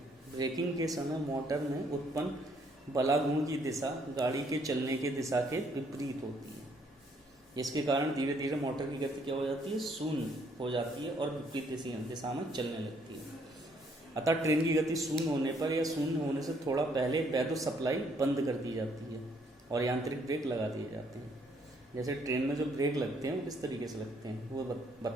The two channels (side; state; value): both; normal; correlation 0.67